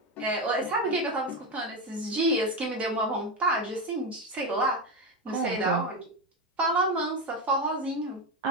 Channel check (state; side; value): normal; both; correlation 0.13